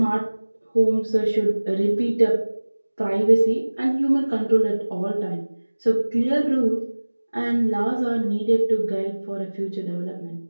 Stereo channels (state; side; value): inverted; both; correlation -1.00